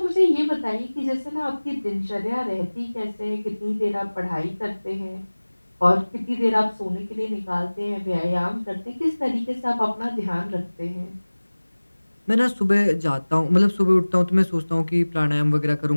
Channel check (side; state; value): both; inverted; correlation -1.00